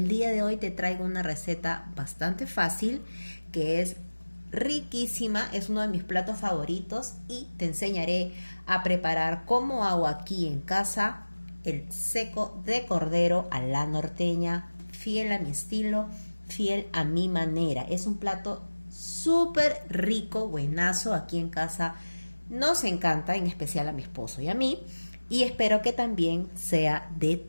día de hoy te traigo una receta bastante fácil que es riquísima, es uno de mis platos favoritos y te enseñaré a preparar cómo hago aquí en casa el seco de cordero a la norteña, fiel a mi estilo, fiel a mi manera. Es un plato súper rico, buenazo. Aquí en casa nos encanta, en especial a mi esposo y a mí, y espero que también sea de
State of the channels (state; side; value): inverted; both; correlation -1.00